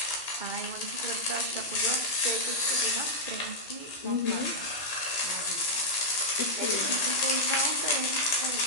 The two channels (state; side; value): late; right; 2.9 ms